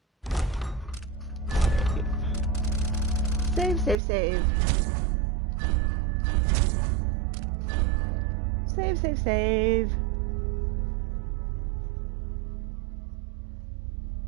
Save, save, save. Save, save, save.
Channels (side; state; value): left; drops out; at 4.0 s